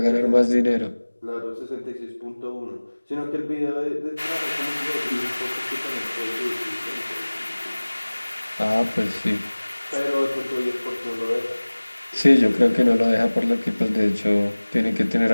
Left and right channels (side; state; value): both; inverted; correlation -1.00